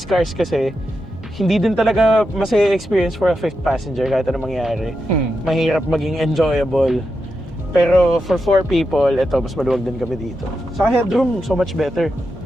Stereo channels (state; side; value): normal; both; correlation 0.87